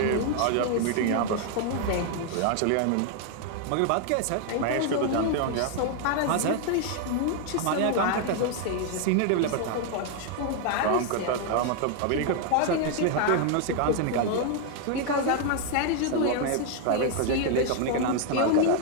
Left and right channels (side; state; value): both; different; correlation 0.00